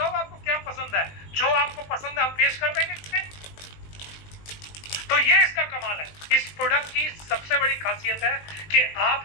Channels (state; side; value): late; right; 19 ms